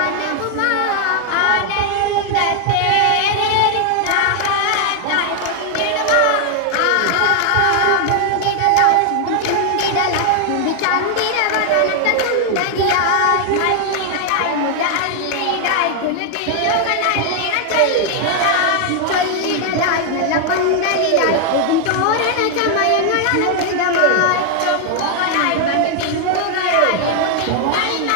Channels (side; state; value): both; different; correlation 0.00